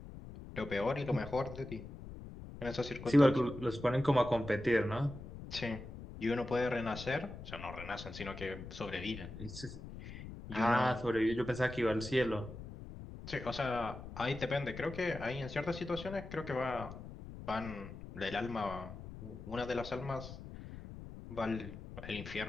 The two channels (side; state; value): left; noise; rumble, 12 dB below the sound